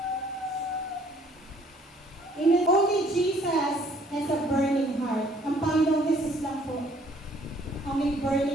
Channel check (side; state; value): both; normal; correlation 0.60